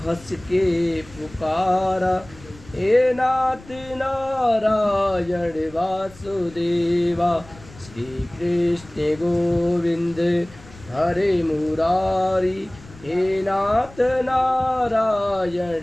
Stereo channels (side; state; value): left; noise; rumble, 21 dB below the sound